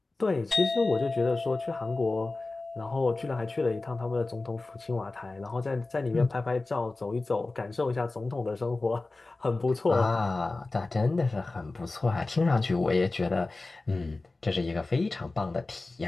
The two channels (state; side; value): quieter; right; 3.3 dB